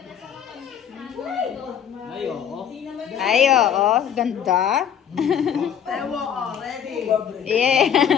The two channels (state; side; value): quieter; right; 8.7 dB